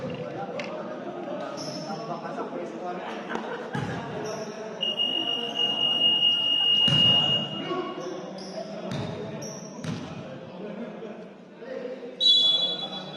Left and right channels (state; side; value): identical; both; correlation 1.00